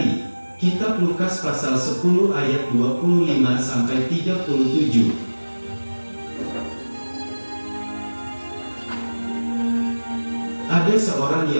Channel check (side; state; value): both; inverted; correlation -1.00